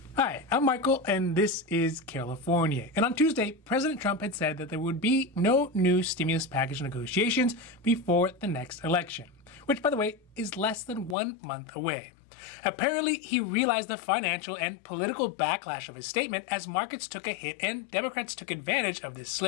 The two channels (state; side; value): drops out; right; at 11.2 s